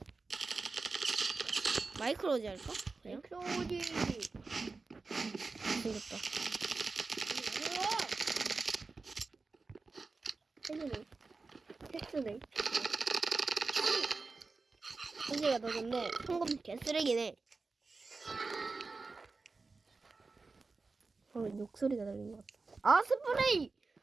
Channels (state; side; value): quieter; left; 4.0 dB